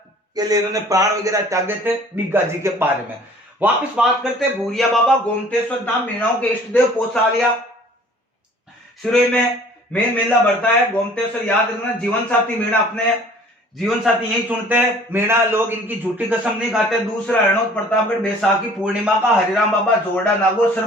लिए इन्होंने प्राण वगैरह त्यागे थे। बिग्गाजी के बारे में वापस बात करते हैं। भूरिया बाबा, गोमतेश्वर धाम, मीणाओं के इष्ट देव, पोसालिया सिरोही में मेन मेला बढ़ता है। गोमतेश्वर याद रखना, जीवन साथी मीणा अपने जीवन साथी यही चुनते हैं। मीणा लोग इनकी झूठी कसम नहीं खाते। दूसरा हरणोद प्रतापगढ़ बैसाखी पूर्णिमा का हरिराम बाबा जोरडा नागौर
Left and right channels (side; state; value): both; normal; correlation 0.51